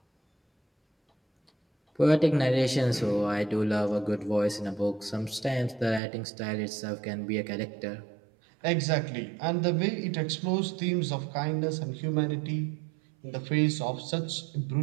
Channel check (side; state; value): left; drops out; at 6.0 s